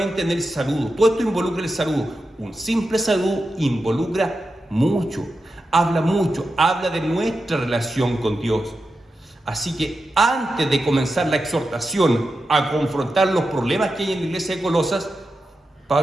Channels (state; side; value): normal; both; correlation 0.90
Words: en el saludo. Todo esto involucra el saludo. Un simple saludo involucra mucho, habla de nuestra relación con Dios. Así que antes de comenzar la exhortación a confrontar los problemas que hay en la iglesia de Colosas,